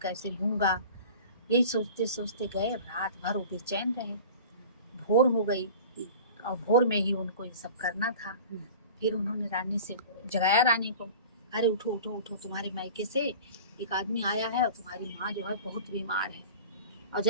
लूँगा। यही सोचते सोचते गए, रात भर वो बेचैन रहे। भोर हो गई और भोर में ही उनको ये सब करना था। फिर उन्होंने रानी से जगाया रानी को, अरे उठो उठो उठो, तुम्हारे मायके से एक आदमी आया है और तुम्हारी माँ जो है बहुत बीमार है, और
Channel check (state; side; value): inverted; both; correlation -0.39